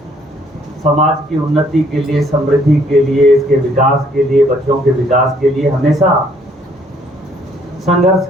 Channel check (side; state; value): both; normal; correlation 0.65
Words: समाज की उन्नति के लिए, समृद्धि के लिए, इसके विकास के लिए, बच्चों के विकास के लिए हमेशा